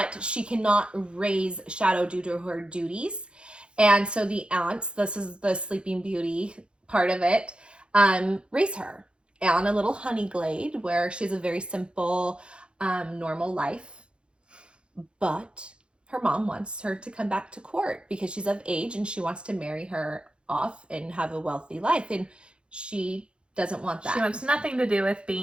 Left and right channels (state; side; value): late; left; 0.055 ms